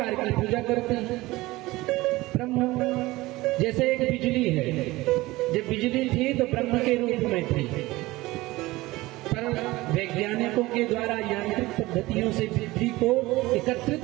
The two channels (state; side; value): quieter; left; 19.6 dB